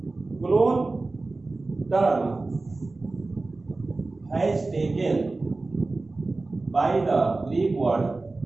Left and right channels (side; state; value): left; quieter; 3.4 dB